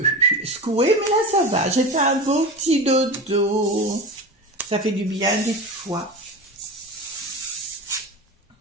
secouée, mais là ça va. J'ai fait un beau petit dodo. Ça fait du bien des fois.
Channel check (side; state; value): both; normal; correlation 0.28